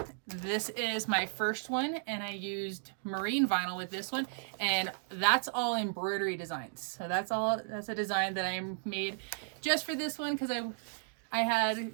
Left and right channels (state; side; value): silent; left; digital silence